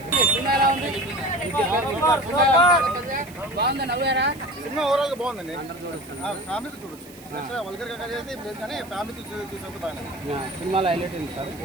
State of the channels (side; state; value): right; noise; hiss, 21 dB below the sound